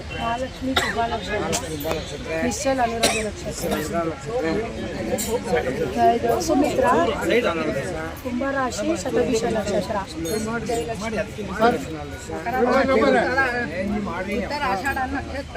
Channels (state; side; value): identical; both; correlation 1.00